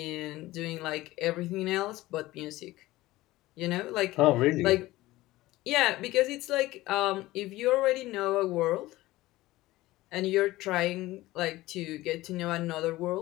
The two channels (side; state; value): right; quieter; 17.8 dB